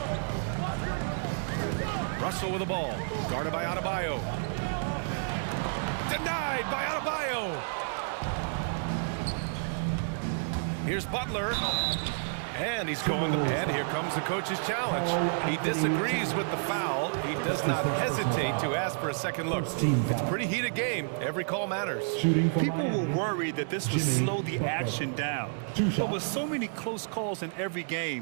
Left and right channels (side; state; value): left; silent; digital silence